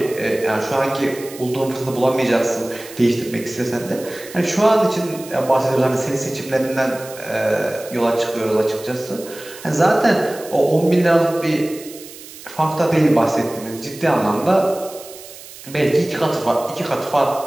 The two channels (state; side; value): noise; right; hiss, 16 dB below the sound